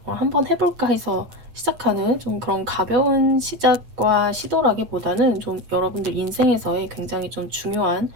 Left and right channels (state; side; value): late; left; 8.3 ms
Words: 한번 해볼까 해서 시작하는 좀 그런 가벼운 시작과 시도라기보다는 좀 여러분들 인생에서의 굉장히 좀 중요한